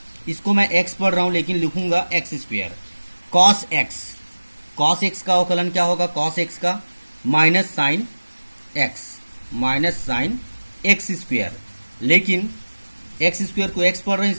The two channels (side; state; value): both; inverted; correlation -1.00